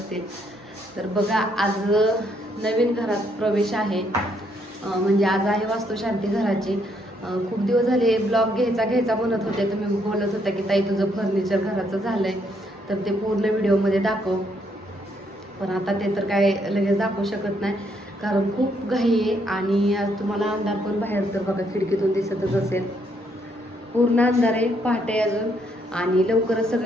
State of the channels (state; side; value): normal; both; correlation 0.72